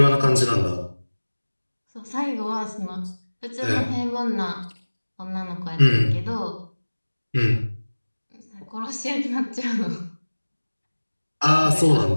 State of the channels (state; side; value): inverted; both; correlation -1.00